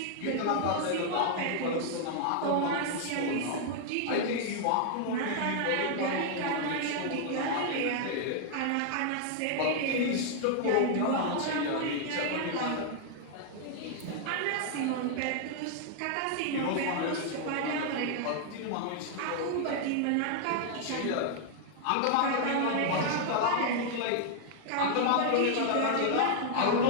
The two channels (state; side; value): different; both; correlation 0.00